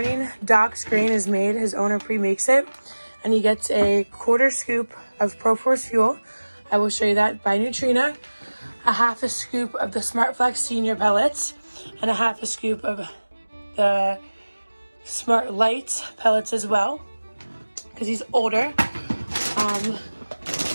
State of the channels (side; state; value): both; inverted; correlation -1.00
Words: Doc's grain is made. His owner pre-makes it. And he gets a 1/4 scoop of ProForce fuel. I will show you that by Neutrina. A 1/2 scoop of the SmartFlex Senior pellets. And a 1/2 scoop of the Smart Lights pellets as well. Because he's older.